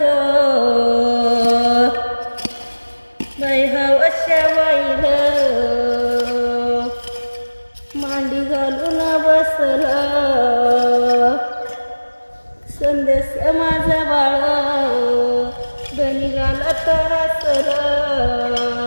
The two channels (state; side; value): inverted; both; correlation -1.00